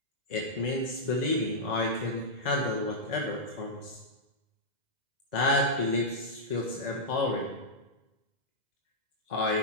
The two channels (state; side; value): late; left; 2.0 ms